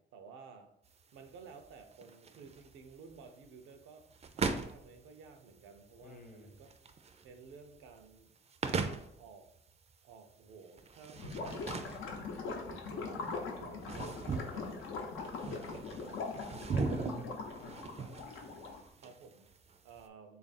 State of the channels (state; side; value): normal; both; correlation 0.44